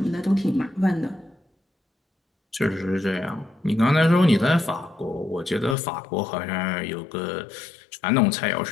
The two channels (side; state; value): right; drops out; at 5.8 s